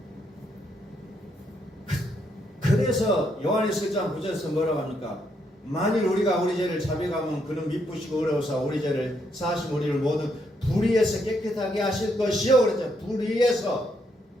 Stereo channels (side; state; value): both; normal; correlation 0.76